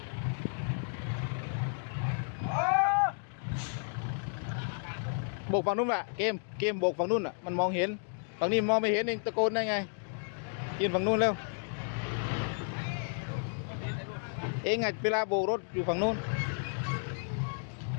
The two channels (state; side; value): silent; right; 56 dB below the other